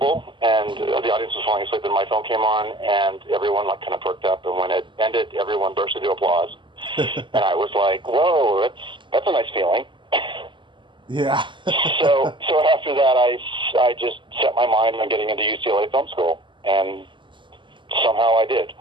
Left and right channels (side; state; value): left; late; 0.24 ms